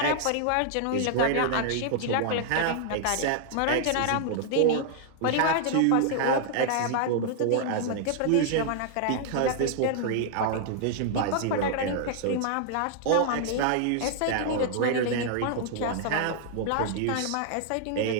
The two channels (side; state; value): both; different; correlation -0.01